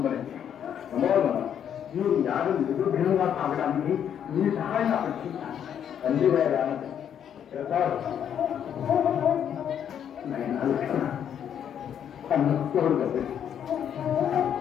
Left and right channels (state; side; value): quieter; right; 9.0 dB